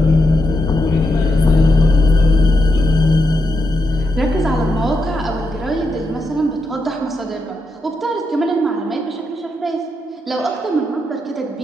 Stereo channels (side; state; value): both; normal; correlation 0.84